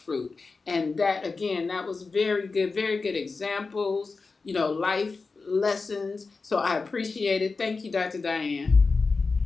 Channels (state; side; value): quieter; right; 4.2 dB